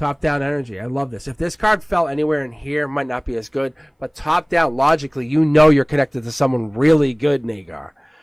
down energy. I love this. If this card fell anywhere in here, it might not be as good. But top down, logically, you know you're connected to someone really good, Nagar.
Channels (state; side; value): identical; both; correlation 1.00